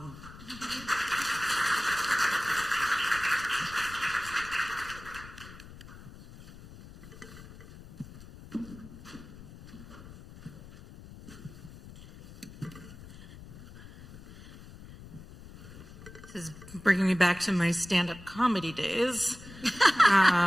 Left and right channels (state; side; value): noise; left; rumble, 17 dB below the sound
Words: This is bringing me back to my stand-up comedy days.